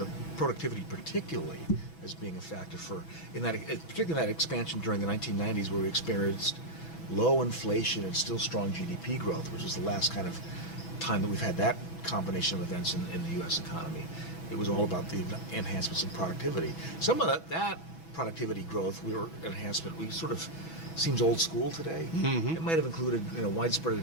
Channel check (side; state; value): right; late; 6.1 ms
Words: productivity particularly, as being a factor particularly in that expansion during the 1990s, where we experienced low inflation and still strong GDP growth, which is the last kind of time that we've had that combination of events in the U.S. economy. It was all about the enhancements in productivity. Some of that productivity growth, we sort of seems old school today. It might have included widespread